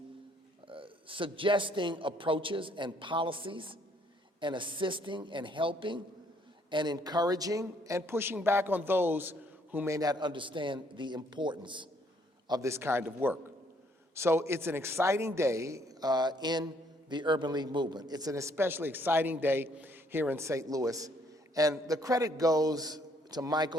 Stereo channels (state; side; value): normal; both; correlation 0.66